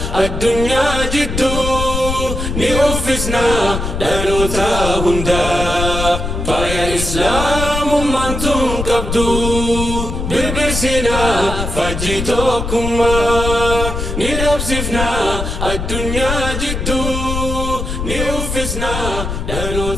addunyaa jidduu ni uffisna dhaloota hundaa faaya islaamummaan tun qabdu birbirsina fajjii tokkummaa ni dhabsifna addunyaa jidduu ni uffisna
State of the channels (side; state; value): left; noise; rumble, 4 dB below the sound